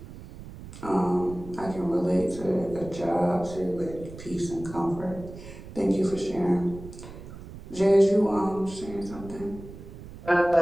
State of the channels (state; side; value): noise; right; rumble, 14 dB below the sound